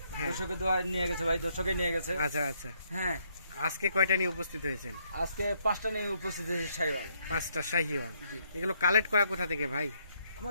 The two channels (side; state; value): both; inverted; correlation -0.73